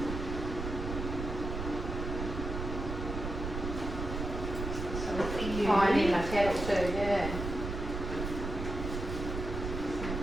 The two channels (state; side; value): noise; right; rumble, 5 dB below the sound